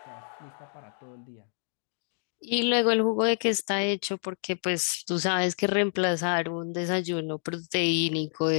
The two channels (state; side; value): silent; right; digital silence